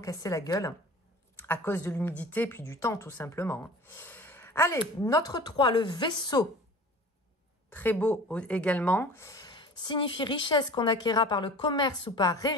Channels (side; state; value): both; normal; correlation 0.41